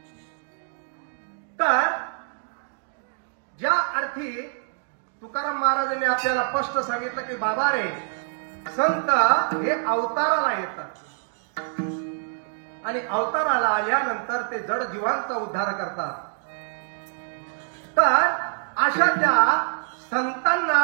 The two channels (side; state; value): left; silent; digital silence